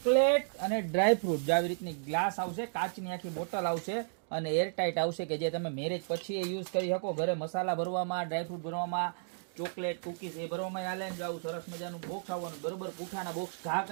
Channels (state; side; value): silent; left; digital silence